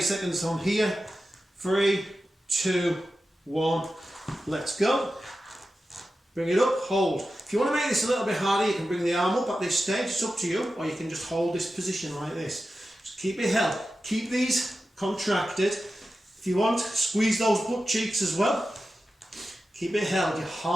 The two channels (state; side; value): normal; both; correlation 0.92